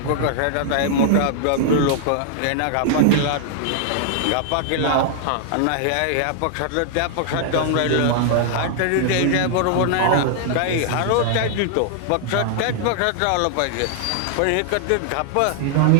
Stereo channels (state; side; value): different; both; correlation -0.01